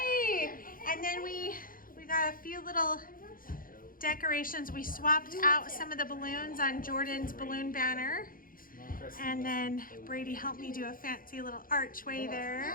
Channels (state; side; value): late; right; 0.41 ms